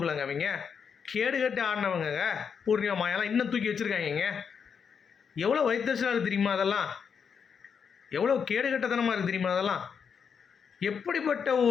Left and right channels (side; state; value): right; quieter; 6.7 dB